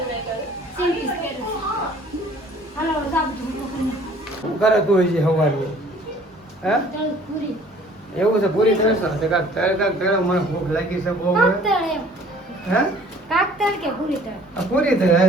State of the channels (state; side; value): normal; both; correlation 0.53